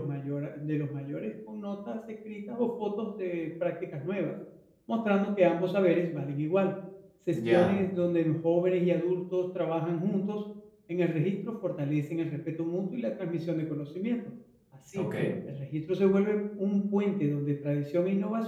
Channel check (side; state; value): both; identical; correlation 1.00